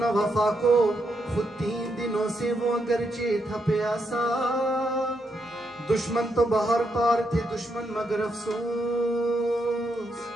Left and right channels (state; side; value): normal; both; correlation 0.80